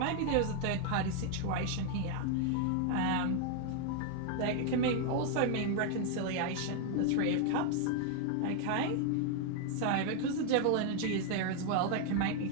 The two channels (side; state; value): both; different; correlation 0.00